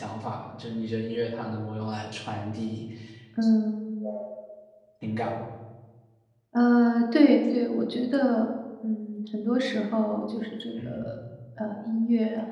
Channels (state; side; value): identical; both; correlation 1.00